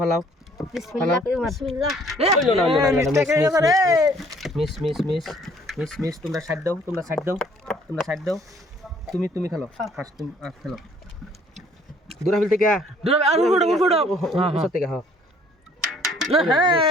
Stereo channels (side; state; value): both; normal; correlation 0.59